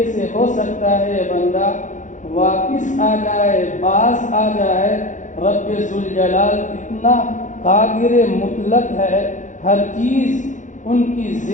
سے ہو سکتا ہے یہ بندہ واپس آ جائے، باز آ جائے۔ رب ذوالجلال اتنا قادر مطلق ہے، ہر چیز ان کی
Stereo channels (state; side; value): late; right; 0.36 ms